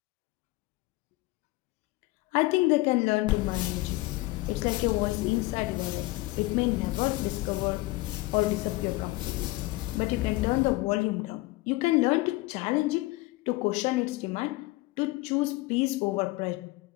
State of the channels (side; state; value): right; quieter; 20.7 dB